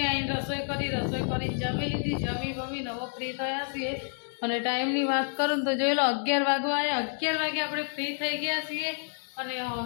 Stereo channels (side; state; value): right; silent; 58 dB below the other